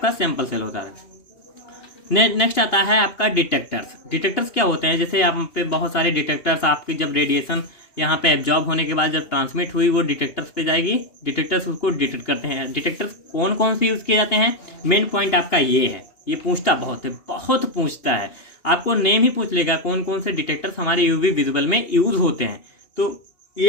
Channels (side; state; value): right; late; 2.9 ms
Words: सैंपल सेल होता है। नेक्स्ट आता है आपका डिटेक्टर्स। डिटेक्टर्स क्या होते हैं, जैसे यहाँ पे बहुत सारे डिटेक्टर्स, आपकी जब रेडिएशन यहाँ पे एब्जॉर्ब होने के बाद जब ट्रांसमिट हुई वो डिटेक्टर्स पे जाएगी, डिटेक्टर्स उसको डिटेक्ट करते हैं। डिटेक्टर्स कौन कौन से यूज़ किए जाते हैं, मेन पॉइंट आपका ये है, ये पूछता बहुत है, बहुत पूछता है, आपको नेम ही पूछ लेगा कौन कौन से डिटेक्टर्स हमारे यूवी विजुअल में यूज होते हैं, तो ये